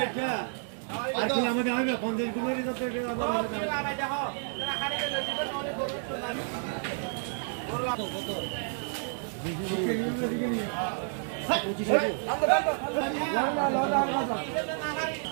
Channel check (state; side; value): silent; left; 57 dB below the other